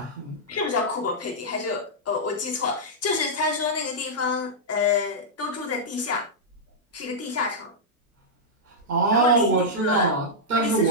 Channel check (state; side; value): normal; both; correlation -0.08